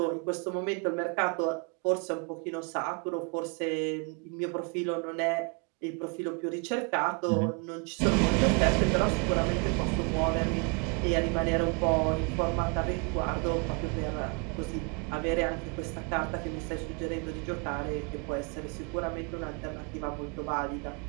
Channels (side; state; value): left; quieter; 33.9 dB